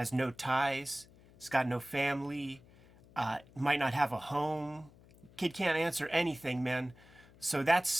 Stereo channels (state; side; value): noise; left; hum, 25 dB below the sound